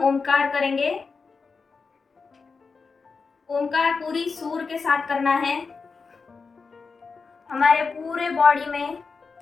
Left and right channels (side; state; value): right; quieter; 4.8 dB